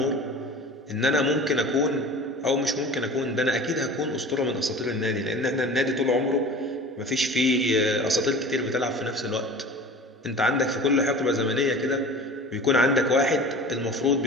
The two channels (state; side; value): normal; both; correlation 0.39